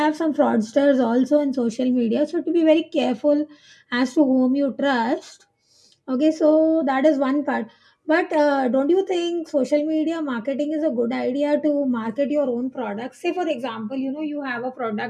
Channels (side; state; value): both; identical; correlation 1.00